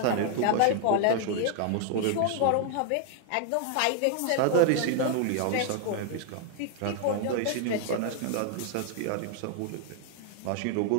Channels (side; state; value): both; different; correlation 0.00